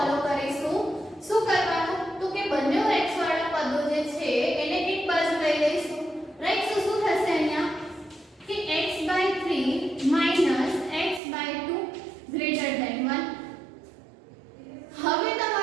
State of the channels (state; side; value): drops out; left; at 11.2 s